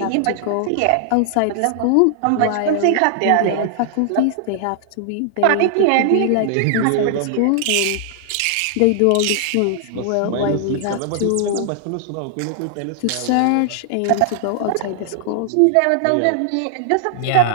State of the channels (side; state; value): both; different; correlation 0.00